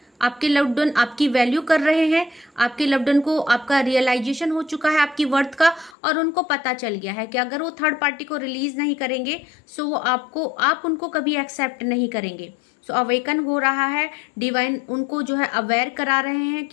आपके लव्ड वन आपकी वैल्यू कर रहे हैं, आपके लव्ड वन को आपका रियलाइजेशन हो चुका है आपकी वर्थ का, और उनको पता चल गया है कि अगर वो थर्ड पार्टी को रिलीज नहीं करेंगे सो वो आप उनको कभी एक्सेप्ट नहीं करेंगे। सो अवेकन हो रहा है, डिवाइन उनको जो है अवेयर करा रहे हैं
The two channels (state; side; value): drops out; right; at 6.0 s